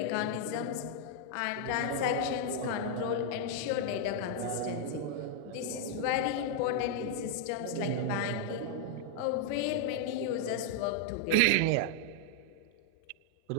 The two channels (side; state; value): both; different; correlation 0.00